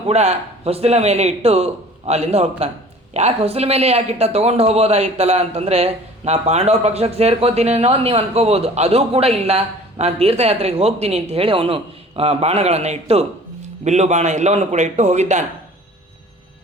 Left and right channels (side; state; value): both; normal; correlation 0.47